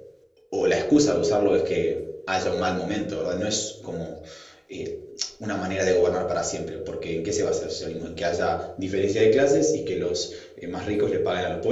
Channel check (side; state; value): both; identical; correlation 1.00